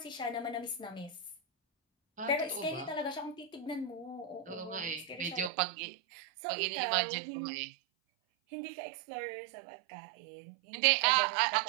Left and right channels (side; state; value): left; drops out; at 5.5 s